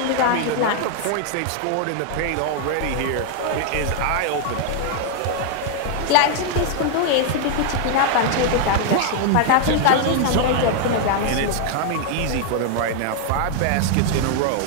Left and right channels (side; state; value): both; different; correlation 0.00